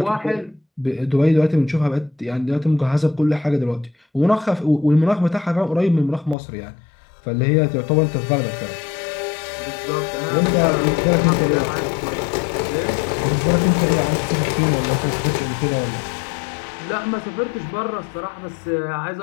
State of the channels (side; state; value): right; drops out; at 6.4 s